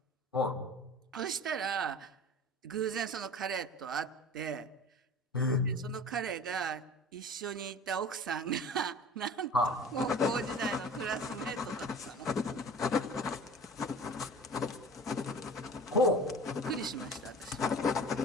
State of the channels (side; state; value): both; normal; correlation 0.40